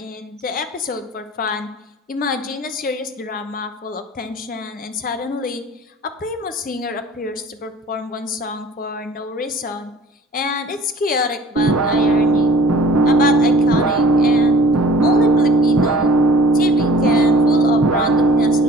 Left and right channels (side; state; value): both; normal; correlation 0.49